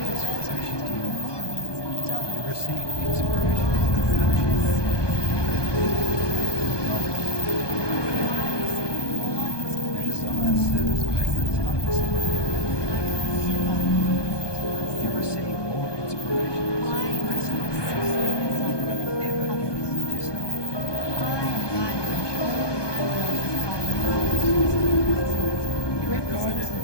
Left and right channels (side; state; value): right; late; 1.2 ms